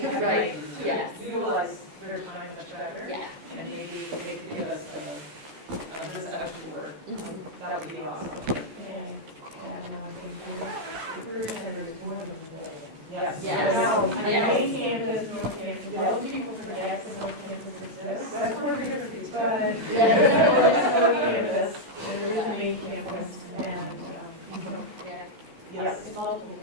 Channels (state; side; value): late; left; 14 ms